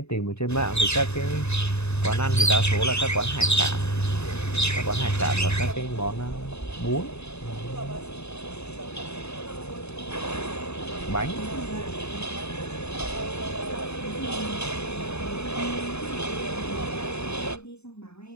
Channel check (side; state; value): right; late; 0.80 ms